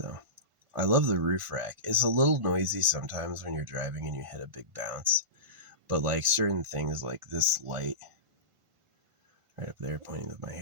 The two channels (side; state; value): left; late; 1.5 ms